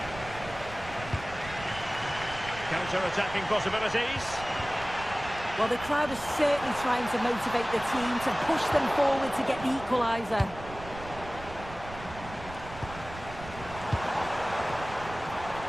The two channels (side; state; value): right; noise; rumble, 14 dB below the sound